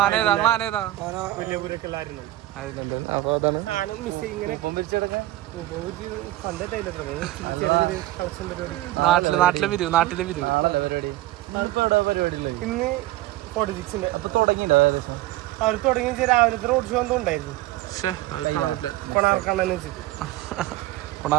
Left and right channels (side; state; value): left; quieter; 16.5 dB